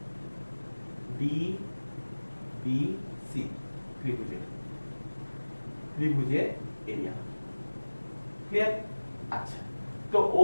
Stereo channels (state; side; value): inverted; both; correlation -1.00